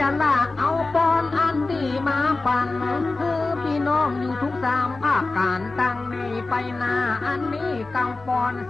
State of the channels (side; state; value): right; quieter; 3.4 dB